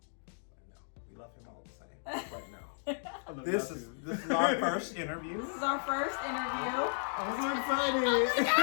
We love him all the same. Right now. This is our first interview. This is our first interview. I'm so excited.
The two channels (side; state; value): right; silent; digital silence